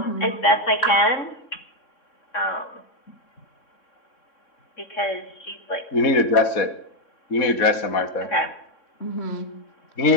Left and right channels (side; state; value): right; late; 3.6 ms